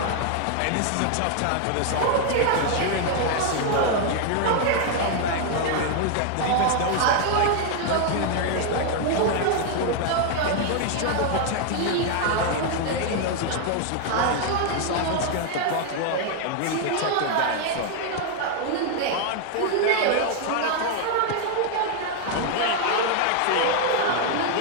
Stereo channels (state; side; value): different; both; correlation 0.00